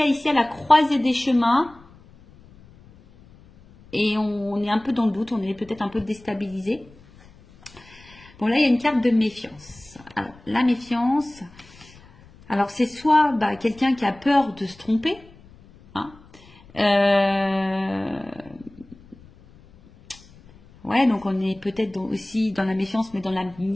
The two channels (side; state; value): left; noise; rumble, 24 dB below the sound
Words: ici à la croisée des chemins. Et on est un peu dans le doute, on est peut-être un peu déstabilisé. Bon, là, il y a une carte de méfiance. Alors, la méfiance, alors c'est soit bah, quelqu'un qui a peur de se tromper, hein. Ouais, donc on est peut-être aussi dans la méfiance, mais dans la